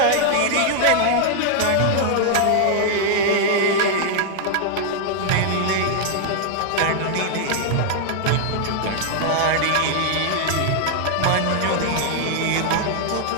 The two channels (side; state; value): both; different; correlation 0.00